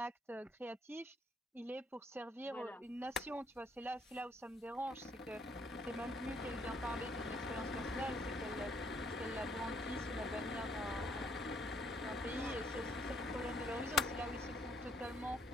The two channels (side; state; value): both; normal; correlation 0.67